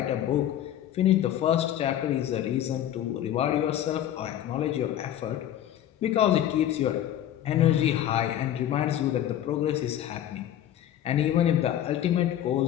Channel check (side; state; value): right; quieter; 11.5 dB